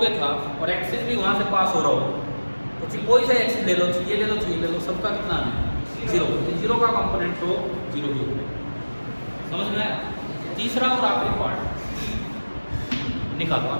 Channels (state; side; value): inverted; both; correlation -1.00